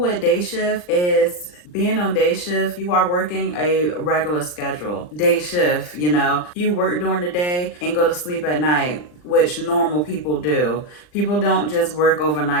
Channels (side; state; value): right; late; 39 ms